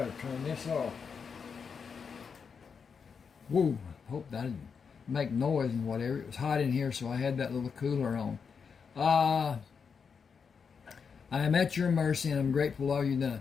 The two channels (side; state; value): right; quieter; 6.1 dB